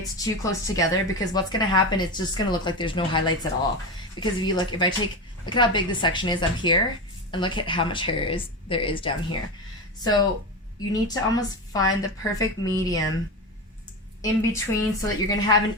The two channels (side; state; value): both; normal; correlation 0.20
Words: too close together, because what's going to happen, it's just going to look like there's no highlights at all. Because if you look, look at how big the section is up here, and look at how much hair there is down here. So you need to almost find the perfect medium in between so that you're going to have an